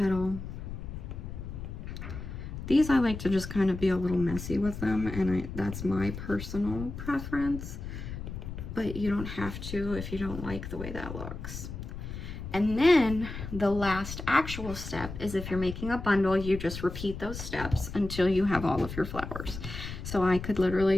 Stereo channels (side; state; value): left; noise; rumble, 8 dB below the sound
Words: These I like to just kind of be a little messy with them, and that's my personal preference, but you don't have to if you don't like the way that looks. And then the last actual step is if you're making a bundle, you just repeat those steps until you have all of your flowers. So I could